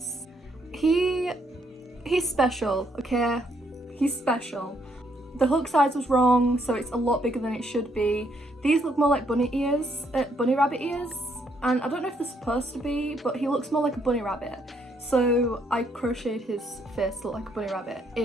He's special, okay? He's special. The hook size was wrong, so it's a lot bigger than it should be. These look more like bunny ears, bunny rabbit ears, and I don't know if they're supposed to be, but he looks more like a bunny rabbit. So I crocheted his face to look like a bunny rabbit.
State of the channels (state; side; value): normal; both; correlation 0.72